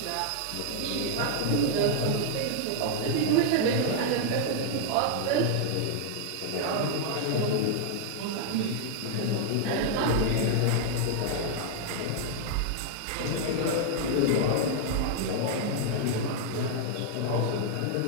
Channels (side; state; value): both; different; correlation -0.01